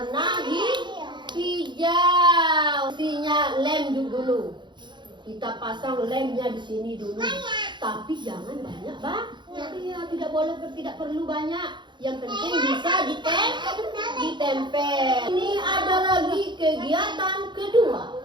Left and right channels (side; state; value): left; late; 0.22 ms